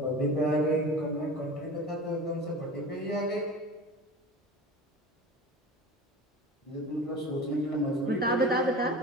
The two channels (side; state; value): both; normal; correlation 0.35